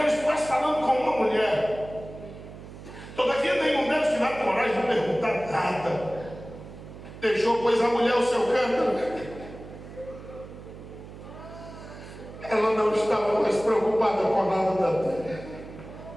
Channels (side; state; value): right; noise; hum, 15 dB below the sound